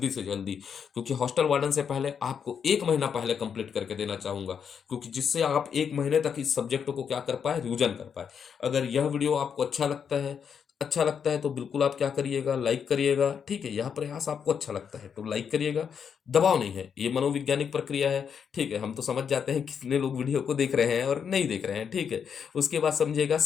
से जल्दी। क्योंकि हॉस्टल वार्डन से पहले आपको 1 महीना पहले कंप्लीट करके देना चाहूंगा, क्योंकि जिससे आप 1 महीने तक इस सब्जेक्ट को क्या कर पाए, रिविजन कर पाए। अगर यह वीडियो आपको अच्छा लगता है तो बिल्कुल आप क्या करिएगा, लाइक करिएगा। ठीक है, यह प्रयास आपको अच्छा लगता है तो लाइक करिएगा, दबाव नहीं है, ये मनोवैज्ञानिक प्रक्रिया है। ठीक है, हम तो समझ जाते हैं कितने लोग वीडियो को देख रहे हैं और नहीं देख रहे हैं। ठीक है, उसके बाद समझिएगा,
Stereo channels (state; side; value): quieter; right; 7.2 dB